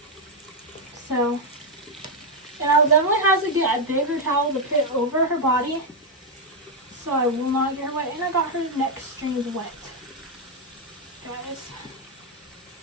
So. And I'll definitely have to get a bigger towel to put over her body. So I will not get her wet. And I got her neck strings wet. Guys.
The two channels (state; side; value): normal; both; correlation 0.02